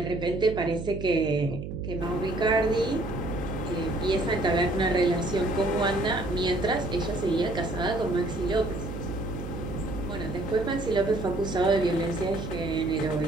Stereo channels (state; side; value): noise; right; hum, 7 dB below the sound